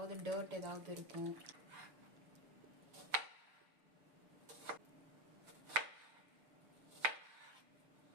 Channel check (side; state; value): left; late; 6.8 ms